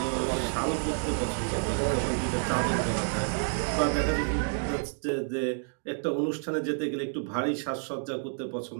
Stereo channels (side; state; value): left; silent; 58 dB below the other